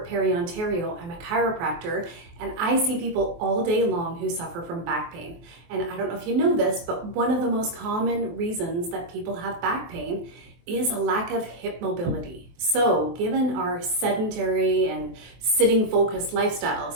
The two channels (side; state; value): left; late; 23 ms